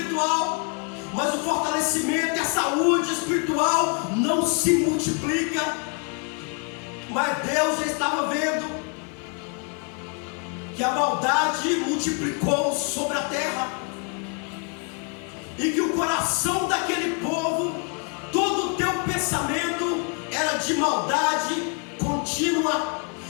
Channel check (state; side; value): quieter; right; 37.3 dB